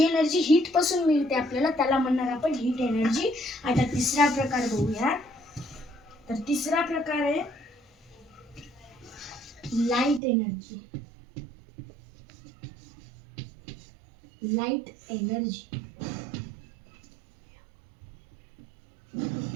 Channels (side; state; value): left; drops out; at 10.2 s